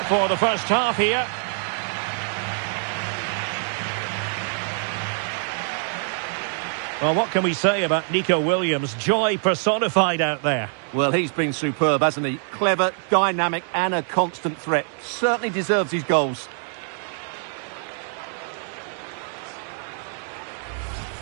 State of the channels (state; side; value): silent; left; 58 dB below the other